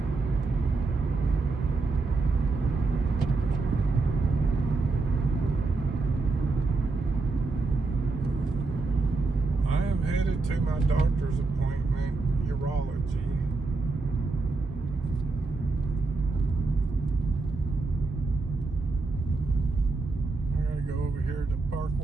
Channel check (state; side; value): quieter; left; 3.7 dB